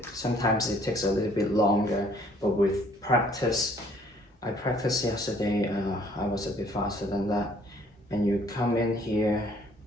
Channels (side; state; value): both; normal; correlation 0.60